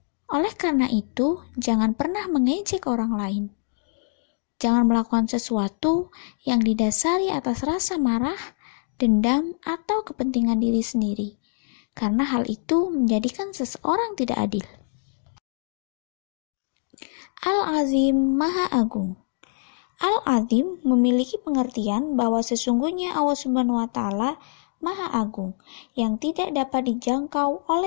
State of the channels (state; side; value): silent; right; digital silence